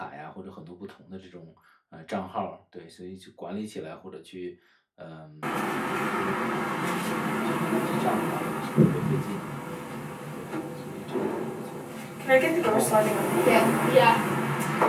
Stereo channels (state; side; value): identical; both; correlation 1.00